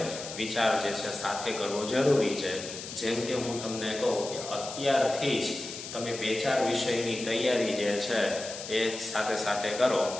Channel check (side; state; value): left; noise; hiss, 10 dB below the sound